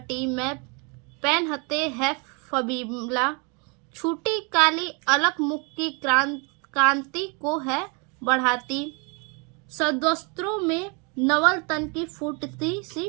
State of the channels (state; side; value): quieter; left; 33.1 dB